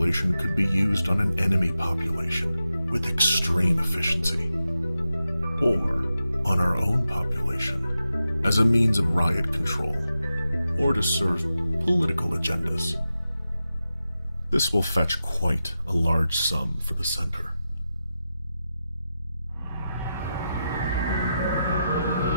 could be used on an enemy population with extreme efficiency, or on our own population as a means of riot control, or to serve political agendas. This will fetch quite a large sum for the center.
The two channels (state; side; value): inverted; both; correlation -0.90